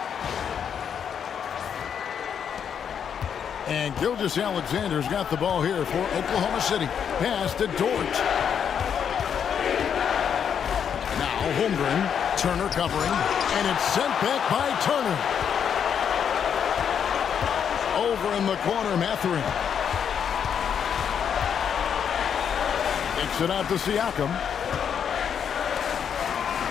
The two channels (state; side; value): quieter; right; 7.9 dB